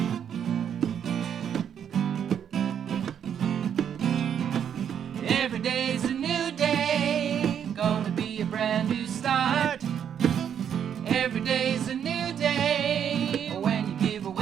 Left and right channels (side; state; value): left; quieter; 8.6 dB